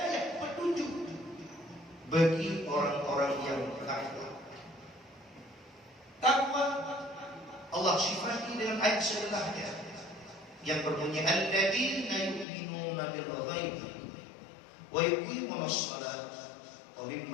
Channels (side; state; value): right; drops out; at 12.5 s